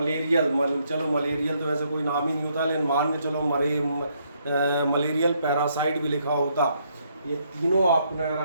चलो मलेरियल तो वैसे कोई नाम ही नहीं होता, लेकिन मान के चलो मलेरियल पैरासाइट भी लिखा होता। ये तीनों आपको नजर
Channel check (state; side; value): inverted; both; correlation -0.73